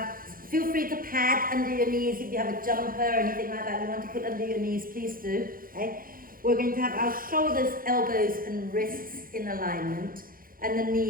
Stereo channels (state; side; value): late; left; 0.41 ms